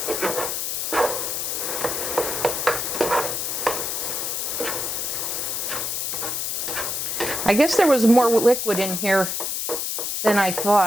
I guess there was more liquid in here than I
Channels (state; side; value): noise; left; hiss, 1 dB below the sound